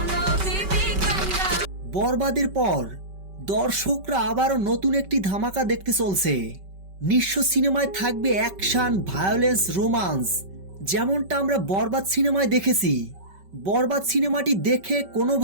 বরবাদের পর দর্শকরা আবারও নতুন একটি ধামাকা দেখতে চলছে। নিঃস্ব সিনেমায় থাকবে অ্যাকশন, ভায়োলেন্স, রোমান্স, যেমনটা আমরা বরবাদ সিনেমায় দেখেছি। বরবাদ সিনেমাটি দেখে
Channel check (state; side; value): late; left; 5.2 ms